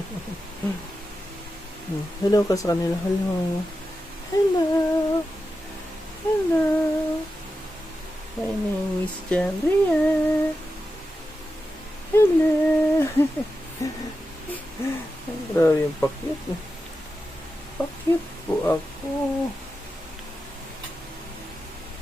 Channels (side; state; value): both; normal; correlation 0.91